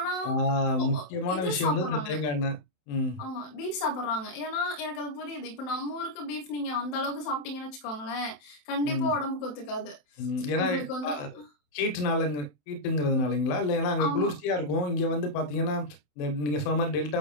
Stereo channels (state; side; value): late; right; 27 ms